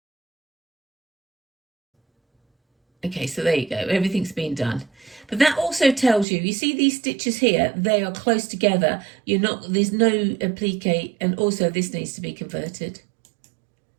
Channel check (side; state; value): left; drops out; at 6.2 s